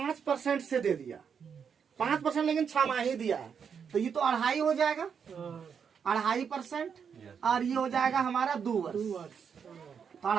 से दे दिया। 5% लेकिन छमाही दिया है, तो ये तो 2.5 हो जाएगा। 2.5% और ये हो जाएगा हमारा 2 वर्ष। तो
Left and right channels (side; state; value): left; quieter; 6.9 dB